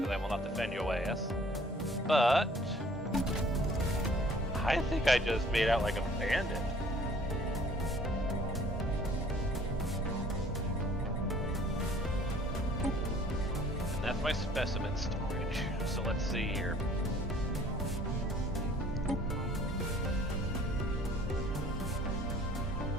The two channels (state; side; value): normal; both; correlation 0.55